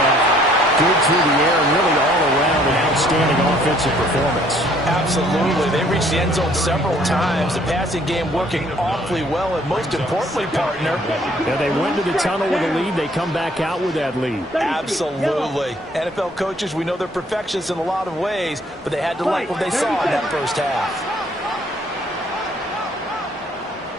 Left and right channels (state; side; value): normal; both; correlation 0.61